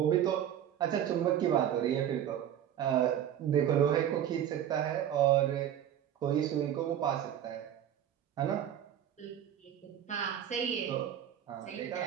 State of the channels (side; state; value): left; quieter; 10.3 dB